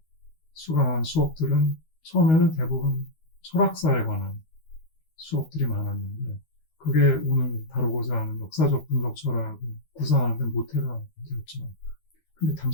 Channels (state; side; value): late; right; 13 ms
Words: 수강한 수업들은 처음에는 대부분 철학사에 관한 수업들이 많았는데 그게 오늘 다루고자 하는 역사적 분석 철학을 구상하는 데 모태가 되었죠. 근데